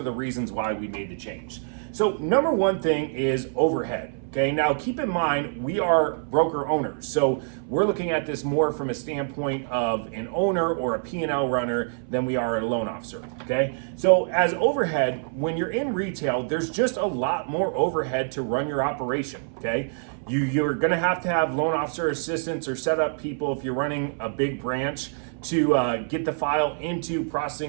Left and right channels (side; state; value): left; silent; 57 dB below the other